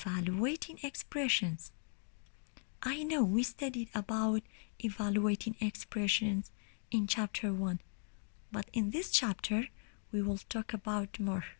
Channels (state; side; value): silent; right; 52 dB below the other